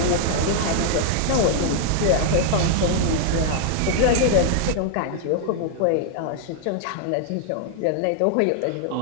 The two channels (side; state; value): both; different; correlation -0.01